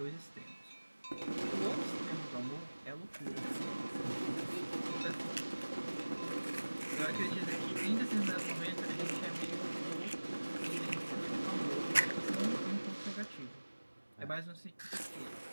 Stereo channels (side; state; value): both; inverted; correlation -1.00